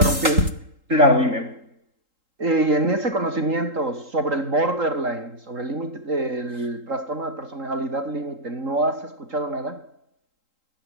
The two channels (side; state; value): left; late; 3.8 ms